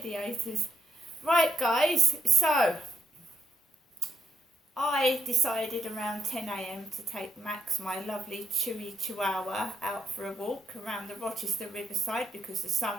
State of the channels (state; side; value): normal; both; correlation 0.77